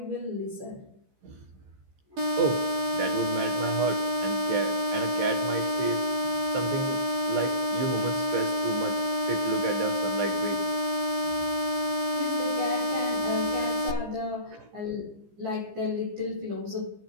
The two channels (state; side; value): late; left; 15 ms